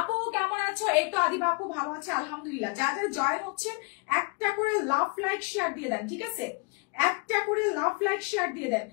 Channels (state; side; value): quieter; right; 30.9 dB